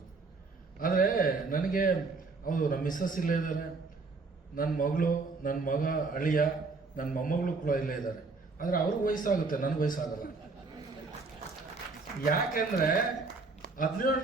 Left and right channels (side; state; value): left; quieter; 4.0 dB